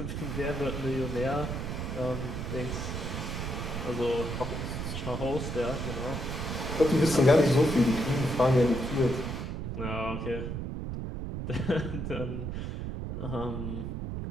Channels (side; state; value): right; noise; rumble, 4 dB below the sound